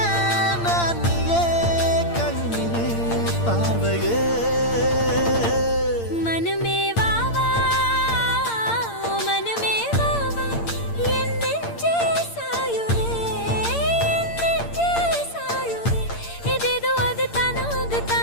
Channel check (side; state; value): right; late; 8.7 ms